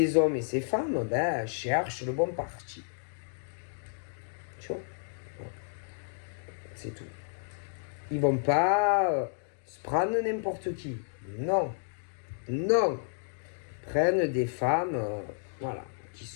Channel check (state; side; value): silent; right; digital silence